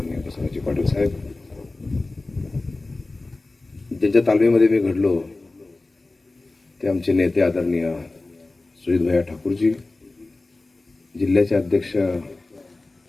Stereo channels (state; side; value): quieter; right; 3.2 dB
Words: बसवराज पाटील साहेब, ज्यांच्या तालमीमध्ये मी घडलो ते आमचे नेते आदरणीय सुजित भैया ठाकूरजी, जिल्ह्याचे अध्यक्ष